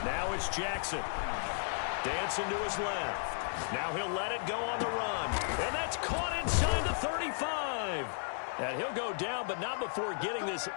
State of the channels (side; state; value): right; silent; digital silence